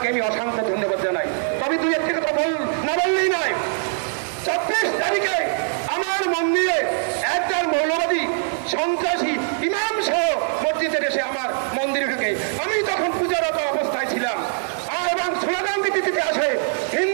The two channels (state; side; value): silent; left; 60 dB below the other